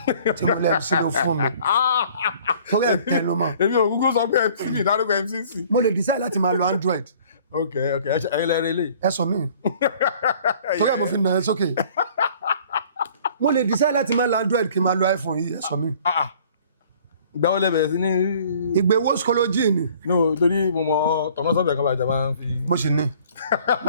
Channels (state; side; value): inverted; both; correlation -0.53